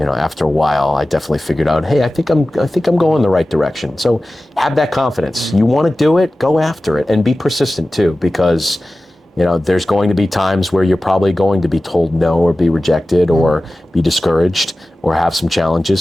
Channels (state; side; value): normal; both; correlation 0.96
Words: after a while, I definitely figured out, hey, I think I'm going the right direction. So have that confidence. You want to do it, go after it, and be persistent too, because, there's going to be times where you're probably going to be told no, or be rejected, or be discouraged, or have some